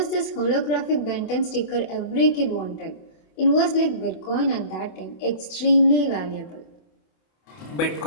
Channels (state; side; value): late; right; 27 ms